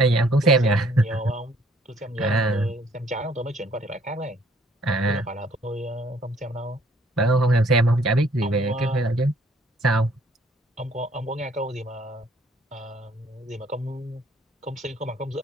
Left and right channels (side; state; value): both; normal; correlation 0.62